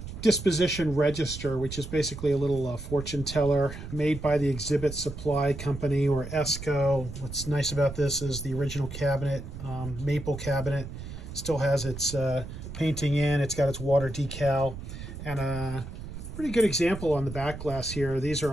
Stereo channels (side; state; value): right; noise; rumble, 10 dB below the sound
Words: Disposition register, which is basically a little fortune teller made by the Exhibit Supply Company, or ESCO. What's nice about this is the original cabinet, maple cabinet, still has its painting in. It's got its water decal, and a pretty good example on the back glass here. These